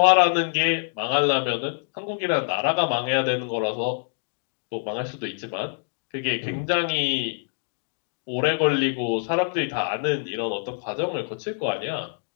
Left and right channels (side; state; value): right; silent; digital silence